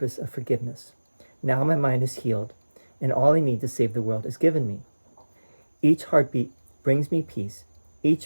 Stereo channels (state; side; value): inverted; both; correlation -1.00